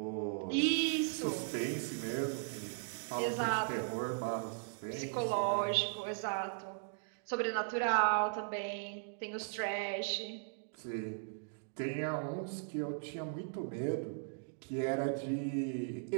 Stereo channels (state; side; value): silent; left; digital silence